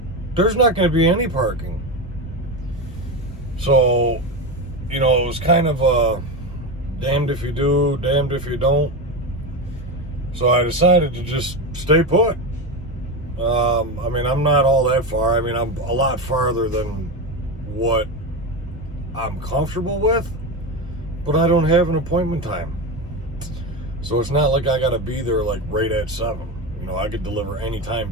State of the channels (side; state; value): both; normal; correlation 0.18